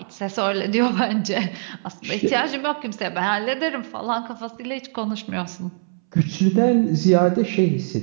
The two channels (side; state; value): left; silent; 64 dB below the other